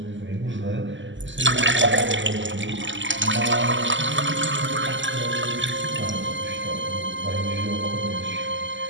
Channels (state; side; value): late; left; 0.54 ms